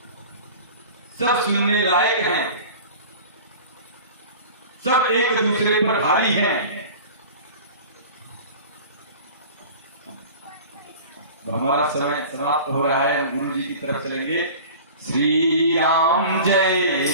सब सुनने लायक हैं, सब एक दूसरे पर भारी हैं। तो हमारा समय समाप्त हो रहा है, हम गुरु जी की तरफ चलेंगे। श्री राम जय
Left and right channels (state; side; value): inverted; both; correlation -0.40